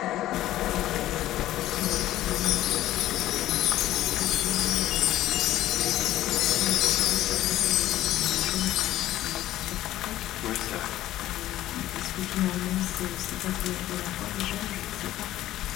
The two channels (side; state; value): right; quieter; 14.3 dB